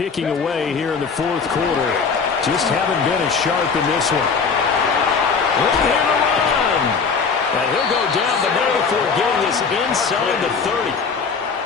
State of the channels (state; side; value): quieter; right; 5.4 dB